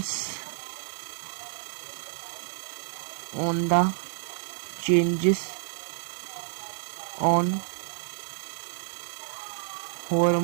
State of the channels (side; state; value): left; silent; digital silence